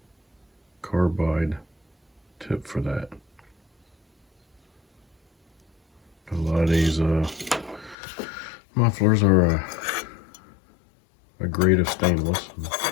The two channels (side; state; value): right; drops out; at 8.0 s